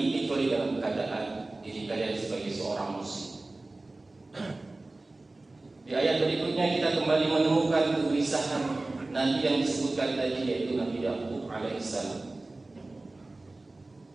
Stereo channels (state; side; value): quieter; left; 3.0 dB